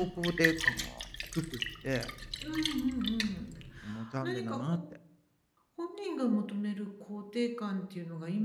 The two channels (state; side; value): identical; both; correlation 1.00